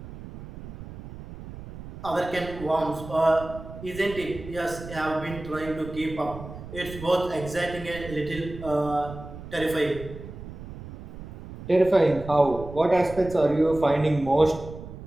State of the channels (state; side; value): noise; right; rumble, 13 dB below the sound